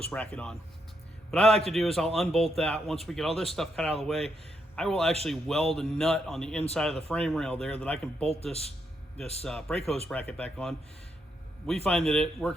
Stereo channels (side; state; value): both; normal; correlation 0.79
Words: bracket on. What I like to do is I'll unbolt that. Once we get all this stuff cut out of the way, I will actually weld a nut on the inside of the frame rail there that I can bolt this brake hose bracket back on. We find that it